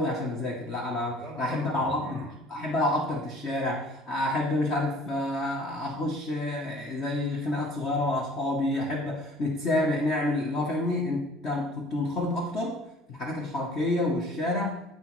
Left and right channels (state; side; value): normal; both; correlation 0.51